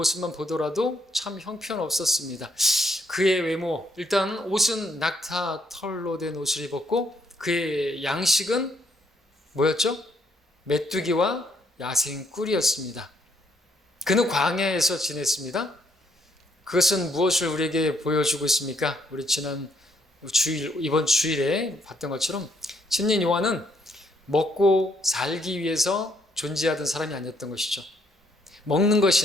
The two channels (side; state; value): both; normal; correlation 0.71